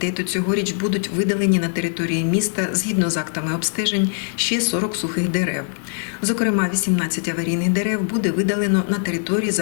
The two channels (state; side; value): silent; right; 65 dB below the other